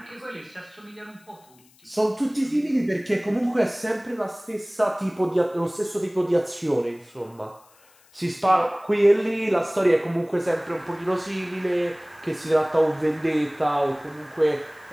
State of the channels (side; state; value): left; noise; hiss, 30 dB below the sound